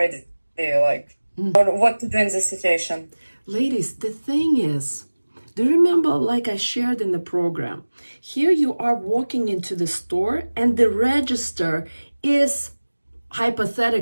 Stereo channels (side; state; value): both; inverted; correlation -1.00